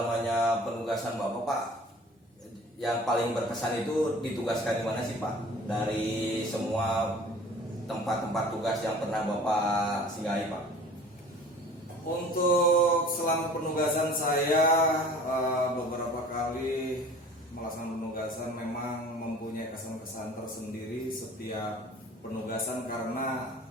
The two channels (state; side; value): normal; both; correlation 0.45